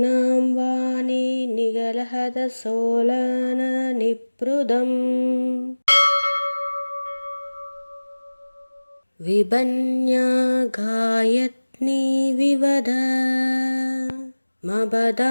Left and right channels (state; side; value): inverted; both; correlation -1.00